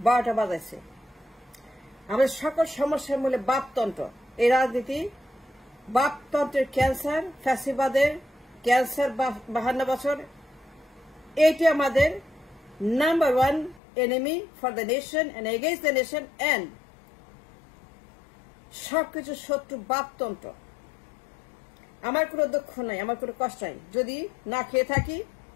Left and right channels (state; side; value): drops out; right; at 13.8 s